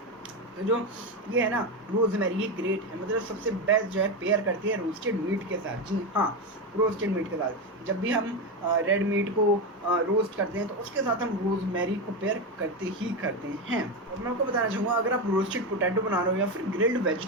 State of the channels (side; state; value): both; normal; correlation 0.13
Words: तो जो ये है ना रोज़मेरी, ये ग्रेट है, मतलब सबसे बेस्ट जो है पेयर करती है रोस्टेड मीट के साथ। जी हाँ, रोस्टेड मीट के साथ जब भी हम रेड मीट को रोस्ट करते हैं तो उसके साथ हम रोज़मेरी को पेयर करते ही करते हैं। और मैं आपको बताना चाहूँगा अगर आप रोस्टेड पोटैटो बना रहे हो या फिर ग्रिल्ड